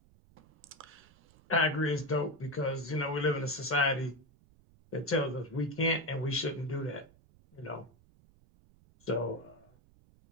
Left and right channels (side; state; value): right; noise; rumble, 28 dB below the sound